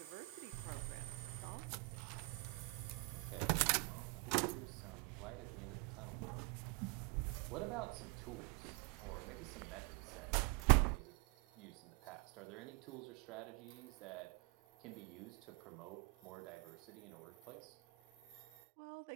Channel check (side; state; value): left; quieter; 27.1 dB